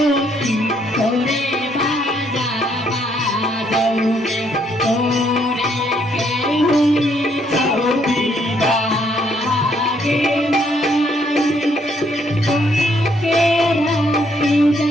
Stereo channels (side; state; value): both; normal; correlation 0.70